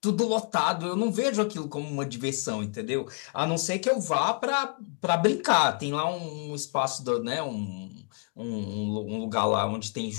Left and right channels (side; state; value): right; quieter; 35.3 dB